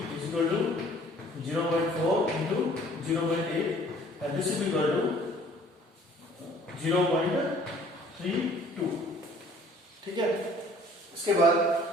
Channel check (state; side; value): normal; both; correlation 0.54